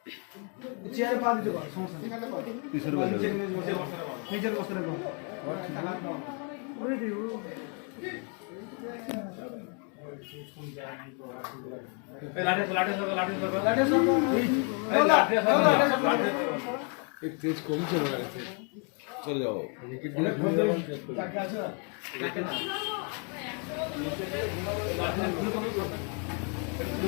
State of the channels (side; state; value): right; quieter; 38.4 dB